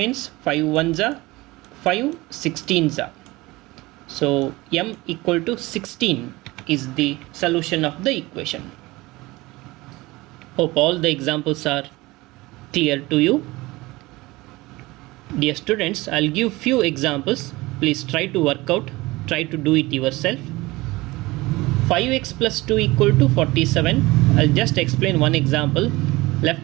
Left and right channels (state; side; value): quieter; left; 20.9 dB